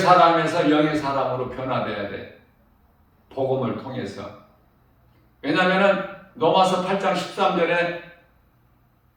영의 사람으로 변화돼야 돼. 복음을 통해서. 왜냐하면 로마서 8장 13절에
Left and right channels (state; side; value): identical; both; correlation 1.00